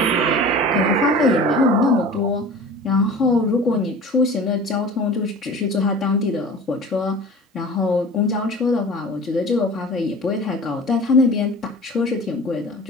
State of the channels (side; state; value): both; normal; correlation 0.39